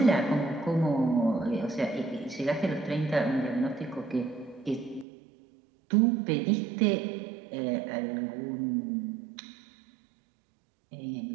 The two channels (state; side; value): drops out; left; at 5.1 s